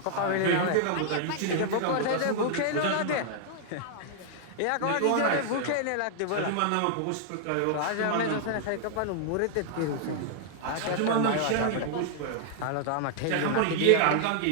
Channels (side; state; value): both; different; correlation -0.01